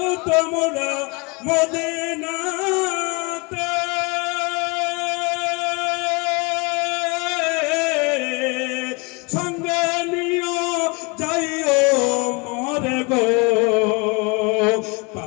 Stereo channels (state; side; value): quieter; right; 29.3 dB